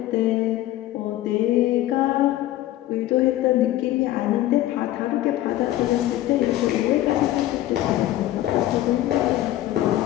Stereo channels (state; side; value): quieter; right; 14.6 dB